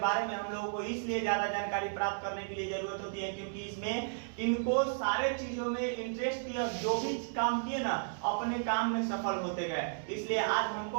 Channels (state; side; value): silent; left; digital silence